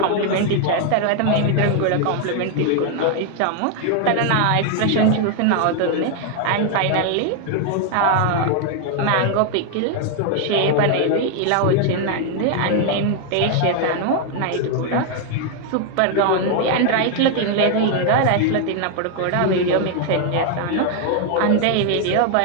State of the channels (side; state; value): both; different; correlation 0.00